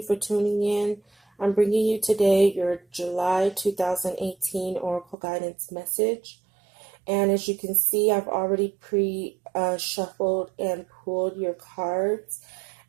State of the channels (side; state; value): left; drops out; at 5.2 s